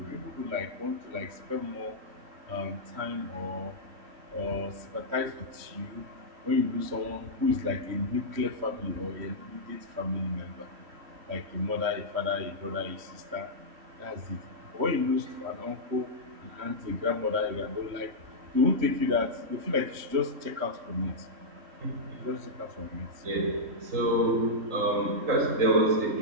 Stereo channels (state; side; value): late; left; 3.1 ms